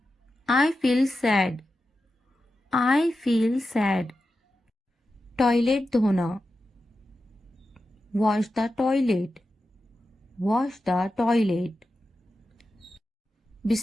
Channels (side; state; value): both; normal; correlation 0.91